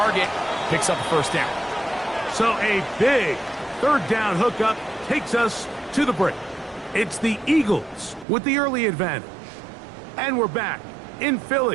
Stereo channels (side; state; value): left; drops out; at 8.2 s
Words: picks up a first down. So a big 3rd down hookup takes us to the break. It's the Eagles with the early advantage. And we're back in